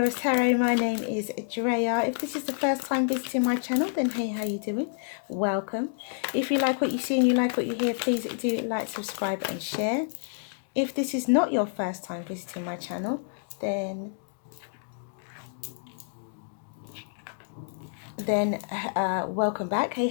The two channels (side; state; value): right; silent; digital silence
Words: Tarot. My name is Drea. If this is the first time visiting my channel, then hey, how you doing? Welcome. If you like what you see and you like what you hear, please do like, subscribe and share. If this is not your first time visiting my channel, then welcome back. Hey,